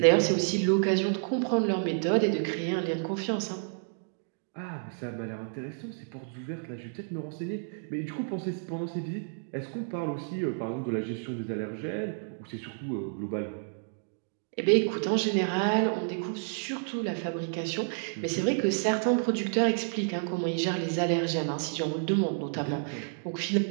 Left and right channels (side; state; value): left; silent; digital silence